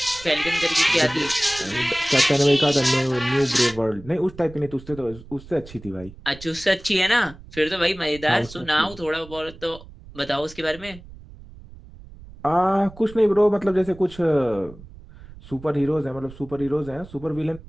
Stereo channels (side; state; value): right; noise; rumble, 18 dB below the sound